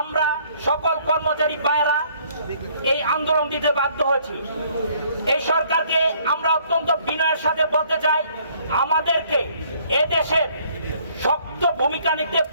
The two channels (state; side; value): inverted; both; correlation -0.62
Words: সকল কর্মচারী ভাইয়েরা এই আন্দোলন দিতে বাধ্য হয়েছি। এই সরকারকে আমরা অত্যন্ত বিনয়ের সাথে বলতে চাই, আমাদেরকে এদেশের শক্ত ভূমিকা নিতে